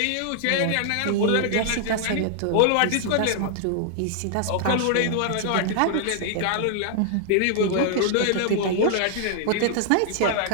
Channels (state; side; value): different; both; correlation 0.00